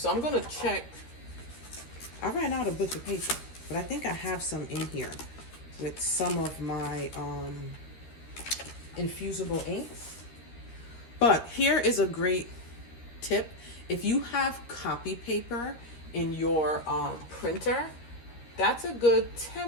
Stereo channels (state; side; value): late; right; 13 ms